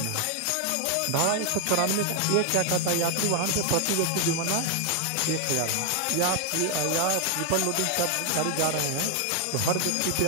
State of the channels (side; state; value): both; different; correlation 0.00